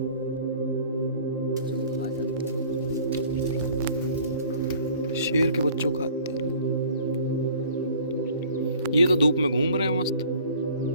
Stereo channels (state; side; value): inverted; both; correlation -0.50